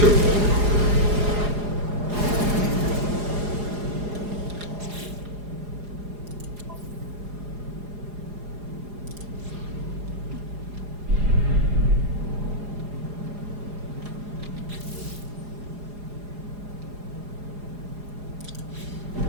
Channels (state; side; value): late; left; 4.8 ms